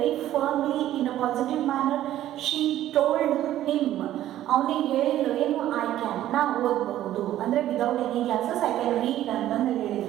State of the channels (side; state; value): left; quieter; 13.0 dB